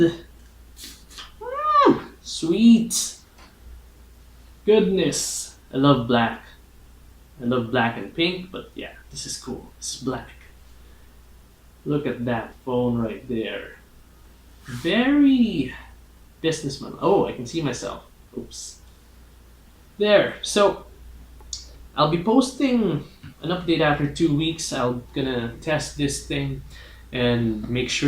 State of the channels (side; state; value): both; identical; correlation 1.00